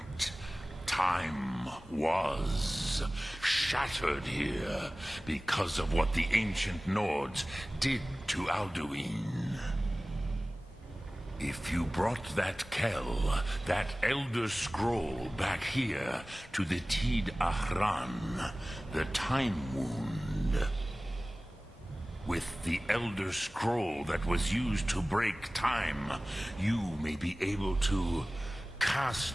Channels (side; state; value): both; normal; correlation 0.98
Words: Time was shattered here because of what the ancient Nords did to Alduin. If you brought that Kell, that Elder Scroll, back here to the Tid Ahran, the Time Wound, with the Elder Scroll that was used to break time, you may be able to